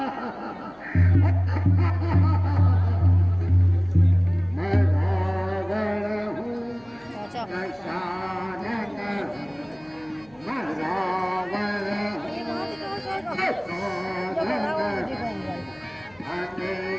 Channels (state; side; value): noise; left; hum, 29 dB below the sound